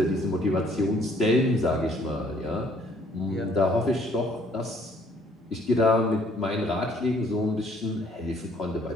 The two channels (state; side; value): normal; both; correlation 0.62